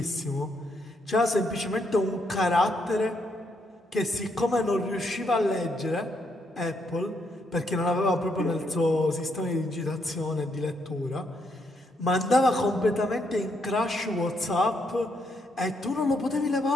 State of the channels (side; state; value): both; normal; correlation 0.76